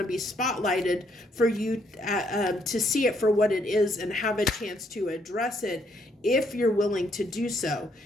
be spotlighted for you to see it for what it is and have a chance to address it if you're willing to do so.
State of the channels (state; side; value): normal; both; correlation 0.71